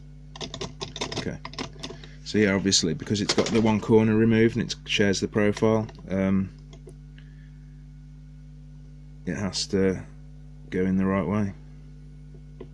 Okay, so yeah, obviously because it's got the one corner removed and it shares the profile, it has to go in the right way.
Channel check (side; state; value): both; identical; correlation 1.00